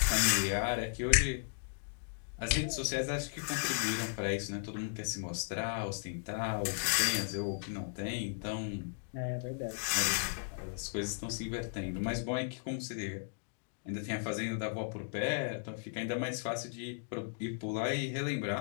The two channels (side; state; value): right; silent; digital silence